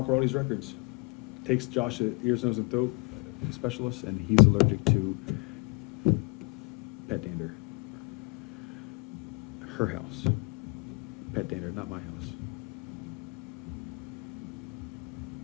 Rawley's records. Takes Josh to ears, nose, and throat specialist, and he's allergic to pet dander. Her house. Pet dander, not my house.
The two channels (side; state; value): right; quieter; 31.1 dB